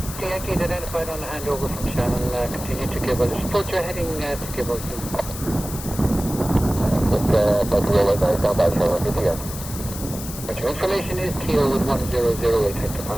Yankee identified on the handover from Shannon, continue to give us, support your heading to give us. Information is Kilo with 1008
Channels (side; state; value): left; noise; hiss, 11 dB below the sound